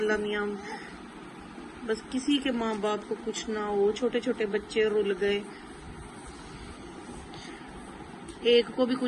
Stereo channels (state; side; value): identical; both; correlation 1.00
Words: मियाँ बस किसी के माँ बाप को कुछ ना हो, छोटे छोटे बच्चे रुल गए। एक को भी